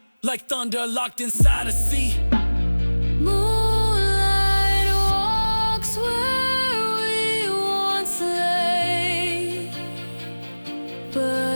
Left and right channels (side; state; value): both; inverted; correlation -1.00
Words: like thunder locked inside a sea. Moonlight walks where we once lay,